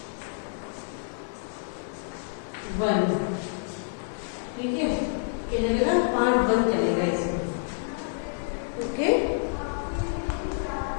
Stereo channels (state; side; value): silent; right; digital silence